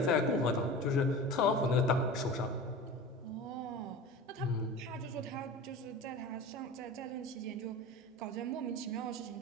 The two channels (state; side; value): normal; both; correlation 0.33